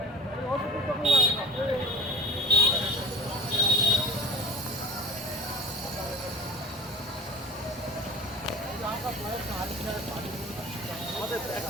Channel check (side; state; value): both; normal; correlation 0.38